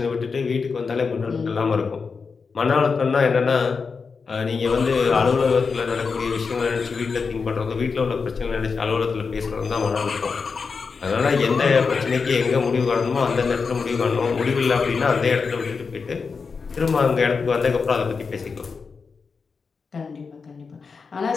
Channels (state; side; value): quieter; right; 5.1 dB